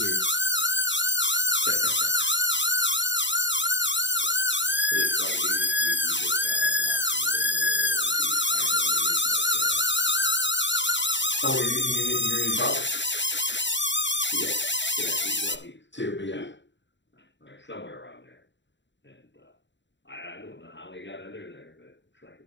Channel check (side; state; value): right; late; 0.53 ms